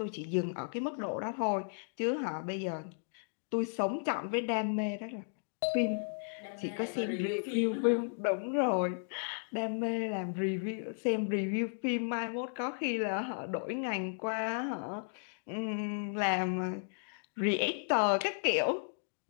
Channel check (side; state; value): right; silent; digital silence